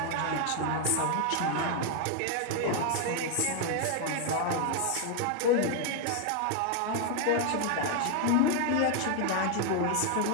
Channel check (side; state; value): both; different; correlation 0.00